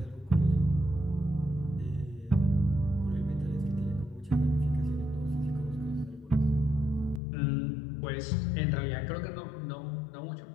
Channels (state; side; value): drops out; right; at 7.2 s